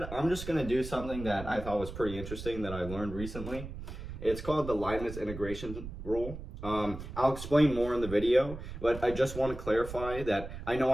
I'm just going to do something that I thought was pretty interesting that I learned recently. It's called the Leibniz integration rule. I'll explain more in the video, but I just want to clarify that I know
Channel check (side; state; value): right; noise; rumble, 10 dB below the sound